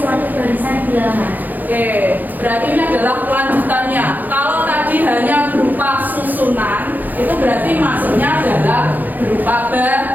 barisan bilangan. Oke, berarti ini adalah kelanjutannya. Kalau tadi hanya berupa susunan, itu berarti maksudnya adalah berupa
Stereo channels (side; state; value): left; late; 0.084 ms